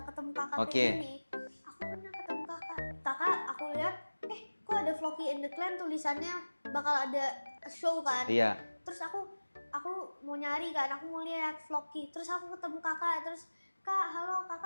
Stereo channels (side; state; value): both; inverted; correlation -1.00